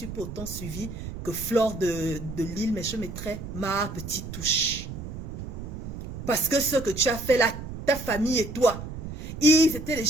pas autant suivi que Fleur de Lille, mais je mettrai ma petite touche. Parce que ce que tu as fait là, ta famille et toi, ils étaient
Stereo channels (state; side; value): noise; right; rumble, 9 dB below the sound